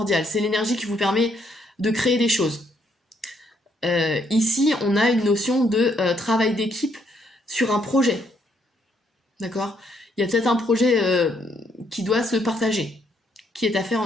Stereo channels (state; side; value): normal; both; correlation 0.72